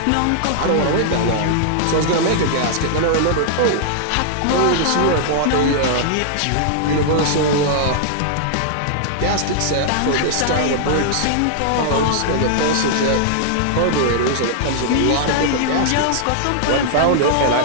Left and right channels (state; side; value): different; both; correlation -0.01